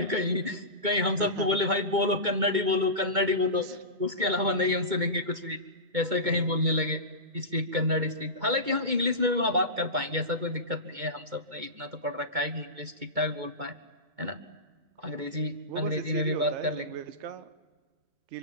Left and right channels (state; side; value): late; left; 2.2 ms